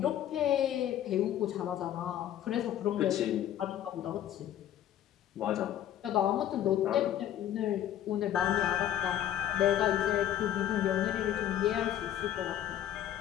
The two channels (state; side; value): quieter; right; 11.3 dB